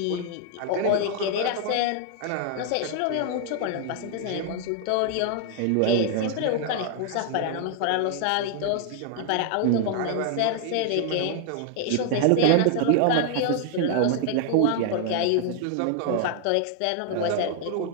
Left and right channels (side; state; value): both; different; correlation 0.00